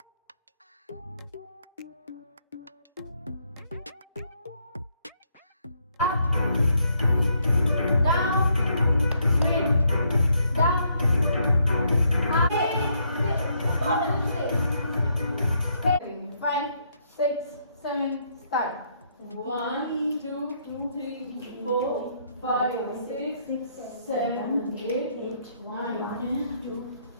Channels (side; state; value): both; inverted; correlation -0.73